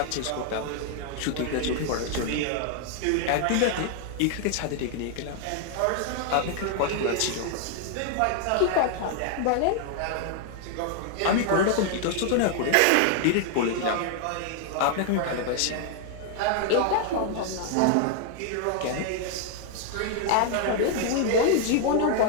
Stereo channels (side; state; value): both; different; correlation 0.00